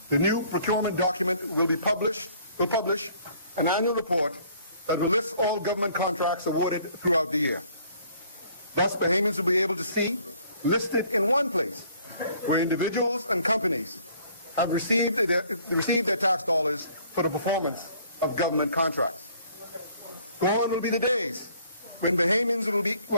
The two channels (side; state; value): both; inverted; correlation -0.59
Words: the new procurement document will publish an annual report that will list all government contracts awarded throughout the year. Thus, Bahamians will be able to see, listed in one place, where individuals and companies have received their tax dollars for the performance of government contracts. Gone will be the days when Bahamians